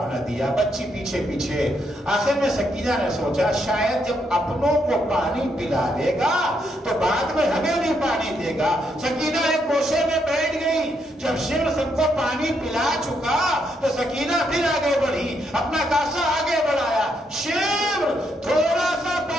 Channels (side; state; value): both; normal; correlation 0.77